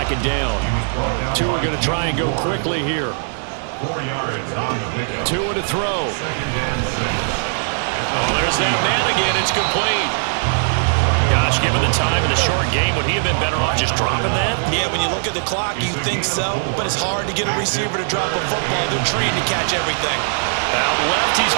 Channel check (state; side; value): silent; left; digital silence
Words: down. Two are going to try and go quickly here. 4 yards on the pickup. Tua to throw. Oh, there's that man again. It's complete. Gosh, given the time in the short game, would he have been better off just dropping that? Yeah, when you look at the clock, you think so, but it's hard to get a receiver to drop a football. They're trained to catch everything. Out left, he's